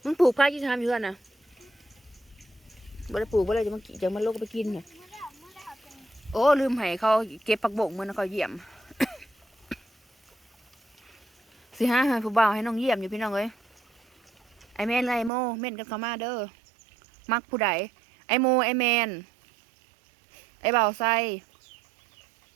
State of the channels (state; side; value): drops out; left; at 15.3 s